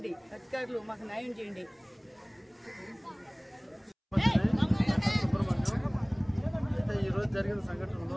అధికారులు, మాకు న్యాయం చేయండి. అయితే ఈరోజు జరిగిన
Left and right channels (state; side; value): identical; both; correlation 1.00